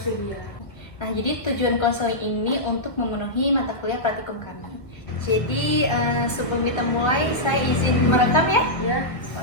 Nah, jadi tujuan konseling ini untuk memenuhi mata kuliah praktikum kami. Jadi, sebelum kita mulai, saya izin merekam ya? Ya.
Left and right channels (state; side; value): late; right; 1.5 ms